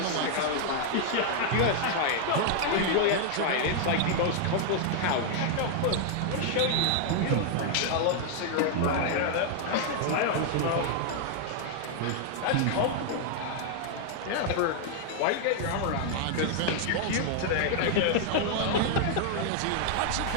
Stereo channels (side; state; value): both; different; correlation 0.00